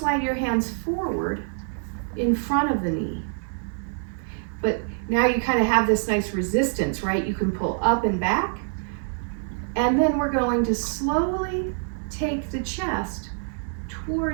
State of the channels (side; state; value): left; silent; digital silence